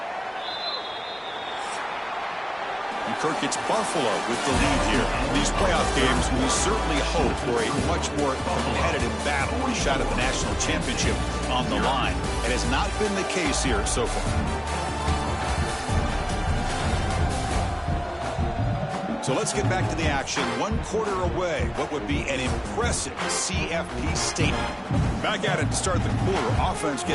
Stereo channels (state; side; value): identical; both; correlation 1.00